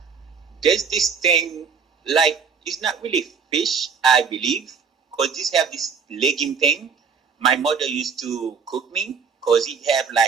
there's this thing, it's not really fish, I believe, because this have this legume thing. My mother used to cook me, because it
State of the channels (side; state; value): left; quieter; 5.9 dB